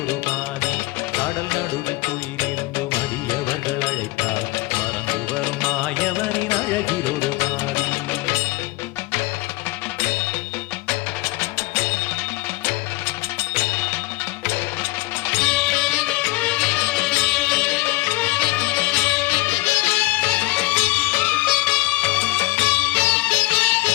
பாதி. கடல் நடுவில் துயிலிருந்து மடியவர்கள் அழைத்தார் மறந்து வரும் மாயவனின் அழகில் ஒரு பாதி.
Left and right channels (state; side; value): quieter; right; 21.3 dB